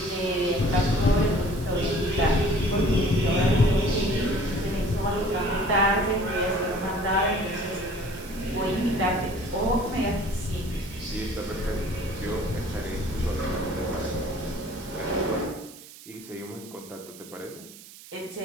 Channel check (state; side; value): noise; right; hiss, 18 dB below the sound